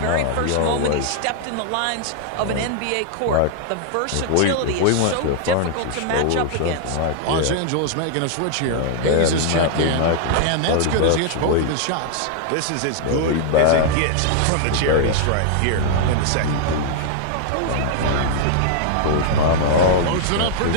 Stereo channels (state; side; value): different; both; correlation 0.00